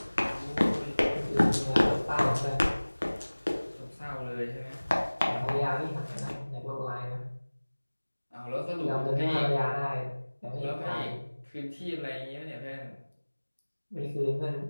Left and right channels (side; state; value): both; inverted; correlation -1.00